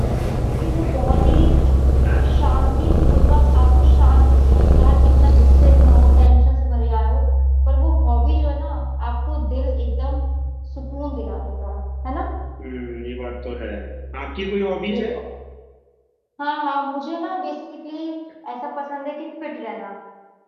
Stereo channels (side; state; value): both; identical; correlation 1.00